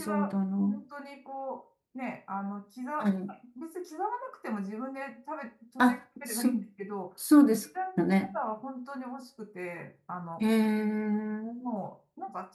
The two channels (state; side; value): identical; both; correlation 1.00